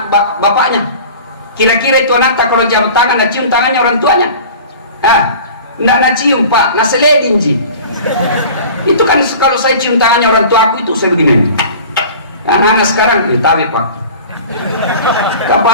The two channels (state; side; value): inverted; both; correlation -0.41